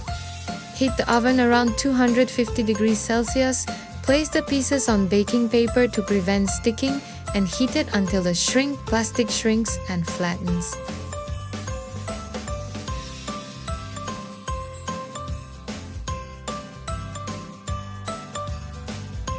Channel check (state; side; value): identical; both; correlation 1.00